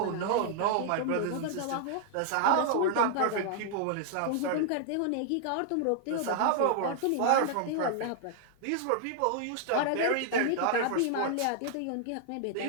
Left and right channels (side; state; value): both; different; correlation 0.00